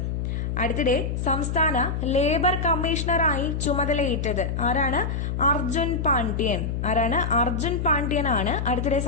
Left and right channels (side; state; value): left; noise; hum, 2 dB below the sound